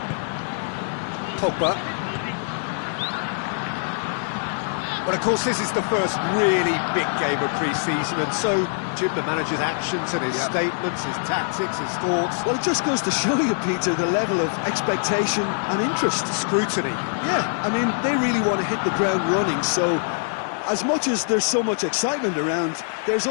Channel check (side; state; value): right; silent; digital silence